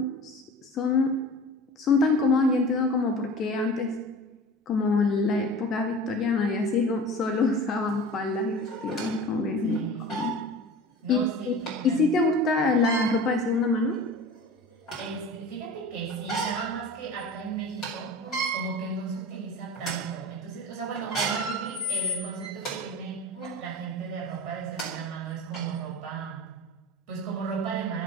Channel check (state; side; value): normal; both; correlation 0.37